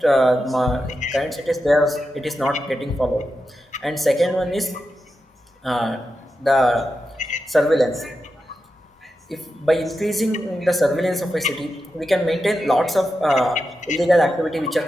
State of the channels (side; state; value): both; normal; correlation 0.89